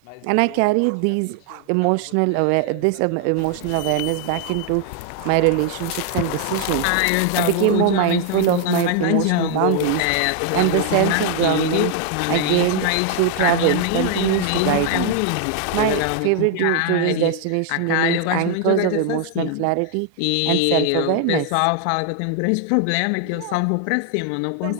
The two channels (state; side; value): different; both; correlation 0.00